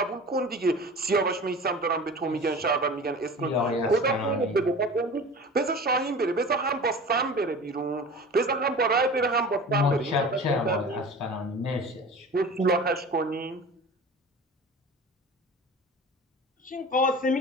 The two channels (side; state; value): both; normal; correlation 0.37